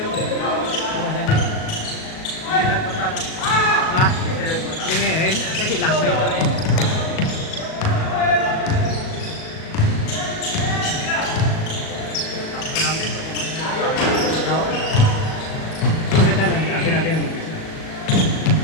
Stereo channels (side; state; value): right; late; 37 ms